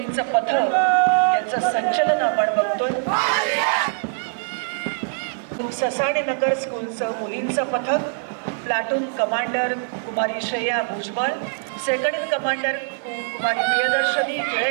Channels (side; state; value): left; silent; digital silence